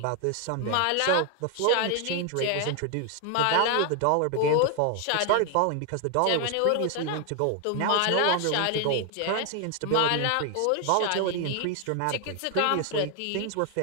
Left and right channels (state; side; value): different; both; correlation 0.01